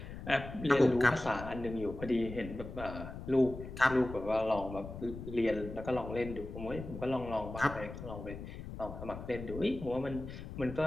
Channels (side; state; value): left; noise; rumble, 10 dB below the sound